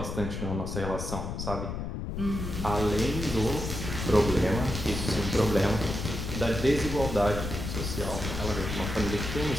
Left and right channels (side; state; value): left; noise; rumble, 4 dB below the sound